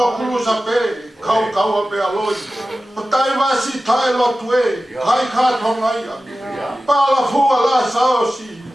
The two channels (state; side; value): normal; both; correlation 0.95